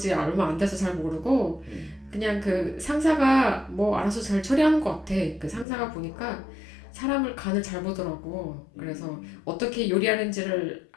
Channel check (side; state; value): right; drops out; at 5.7 s